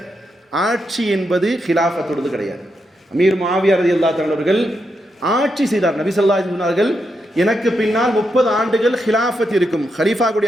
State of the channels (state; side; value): normal; both; correlation 0.83